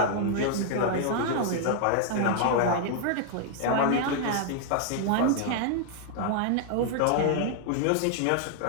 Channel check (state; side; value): different; both; correlation 0.00